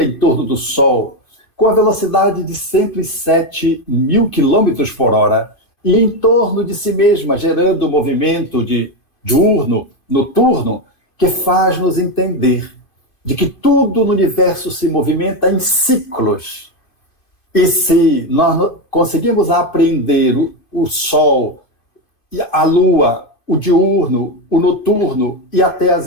em torno do Sol, com a velocidade de 107 mil quilômetros por hora, e em torno de si mesma, gerando um movimento de diurno, noturno, que faz nos entender de que tudo no universo se movimenta em ciclos. E se nós conseguimos aprender o Sol, a Lua, o diurno, o noturno e até as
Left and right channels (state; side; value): late; right; 2.4 ms